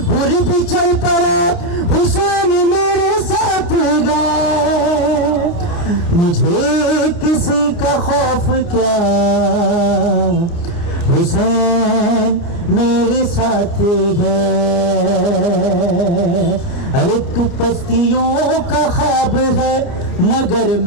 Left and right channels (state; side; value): late; right; 29 ms